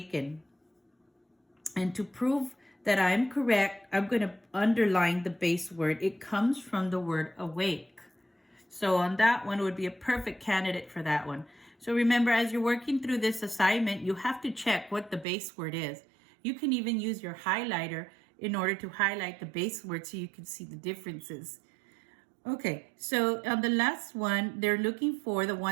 And to prove that I'm correct, I'm going to underline the base word. It comes from the word awake. So on that one, it would be a perfect candidate for that one. So remember, as you're working through this assignment, you have to check what the base word is. You can even use your highlighter in order to highlight the base word so you can see the differences. Okay, so on the last one, they're looking for the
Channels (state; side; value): drops out; left; at 15.2 s